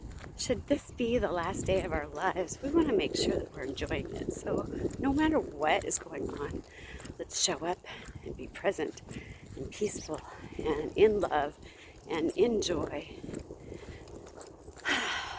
should this be the last day of our lives, we want to make sure that we're enjoying it. So no matter what is going on, let's show up and be present and peaceful and in love and in joy.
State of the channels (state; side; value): identical; both; correlation 1.00